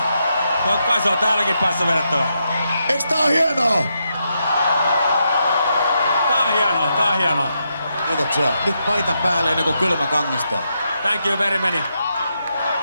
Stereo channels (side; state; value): both; inverted; correlation -0.82